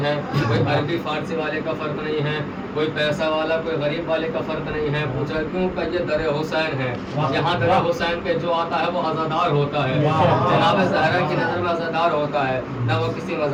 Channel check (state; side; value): identical; both; correlation 1.00